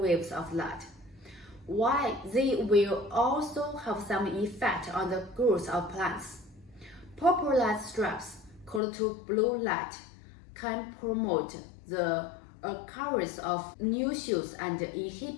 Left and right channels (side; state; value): right; drops out; at 8.8 s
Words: of light. While they will also have some effect on the growth of plants. Purple light strips, called to blue light, can promote the occurrence of new shoots and